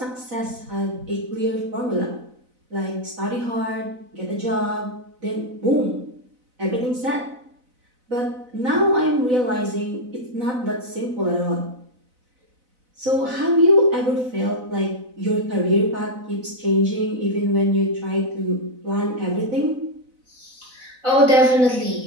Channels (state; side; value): late; left; 4.0 ms